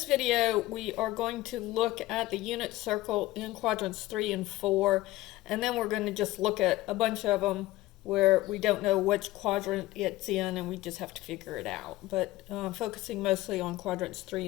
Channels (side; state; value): right; quieter; 17.5 dB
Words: video we are going to look at the unit circle in quadrants 3 and 4, and then we're going to just look at a bunch of them where we don't know which quadrant it's in and we just have to figure it out. But focusing mostly on quadrants 3